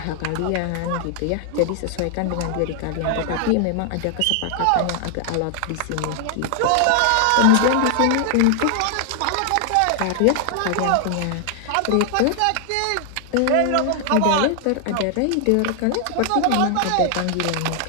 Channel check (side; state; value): both; different; correlation 0.00